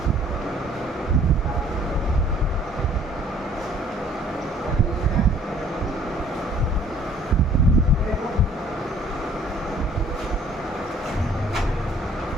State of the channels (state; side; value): normal; both; correlation 0.56